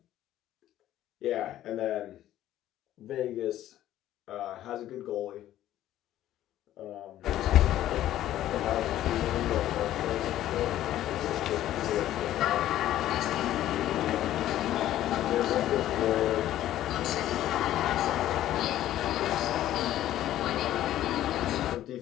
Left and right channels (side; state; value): right; quieter; 13.0 dB